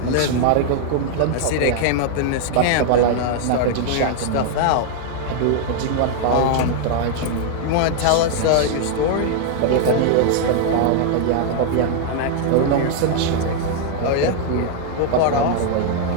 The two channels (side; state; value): both; different; correlation 0.00